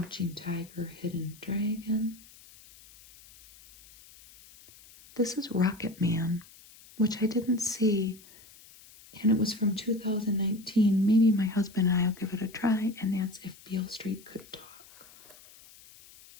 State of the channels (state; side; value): noise; left; hiss, 23 dB below the sound